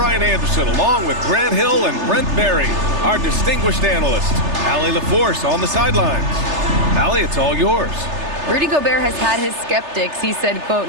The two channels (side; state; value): left; late; 3.3 ms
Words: Anderson along with Grant Hill and Brent Berry, our distinguished analyst. Allie LaForce on the sidelines. Allie, it's all yours. Rudy Gobert has had his skeptics. He said, quote,